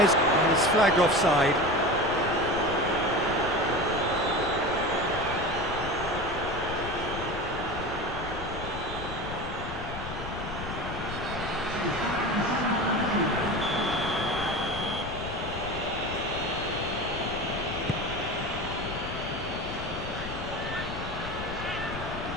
is flagged offside.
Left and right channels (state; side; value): noise; left; rumble, 8 dB below the sound